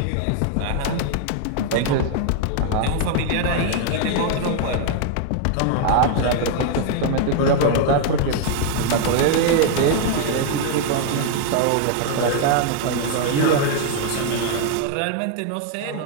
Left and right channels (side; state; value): both; different; correlation 0.00